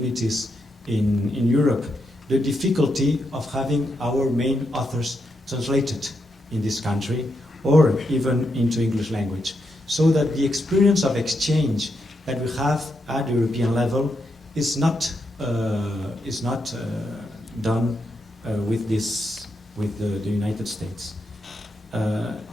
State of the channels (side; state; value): both; normal; correlation 0.82